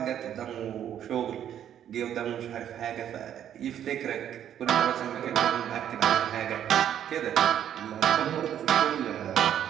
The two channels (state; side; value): quieter; left; 10.1 dB